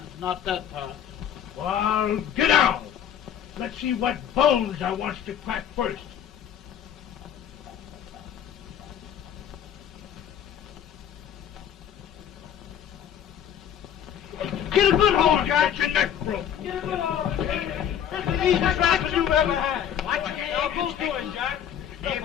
not that part. Well, get out. Let's see what bones I wants to crack first. Get a good hold, Jack. Get your neck broke. Get a good hold. That's the easiest rifle you ever had. Watch it. Now go to him, Jack. Step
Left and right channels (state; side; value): quieter; right; 9.4 dB